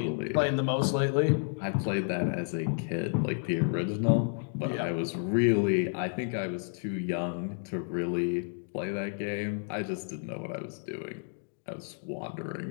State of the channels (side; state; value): right; silent; digital silence